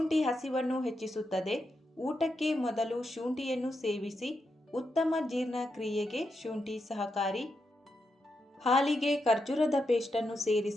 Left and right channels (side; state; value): both; normal; correlation 0.85